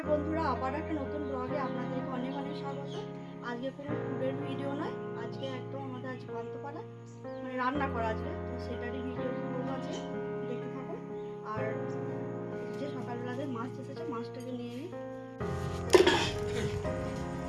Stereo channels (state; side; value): identical; both; correlation 1.00